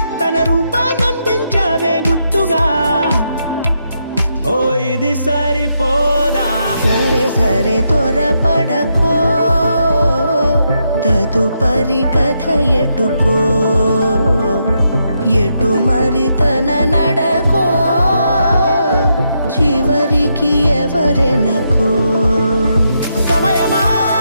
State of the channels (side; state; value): both; inverted; correlation -0.80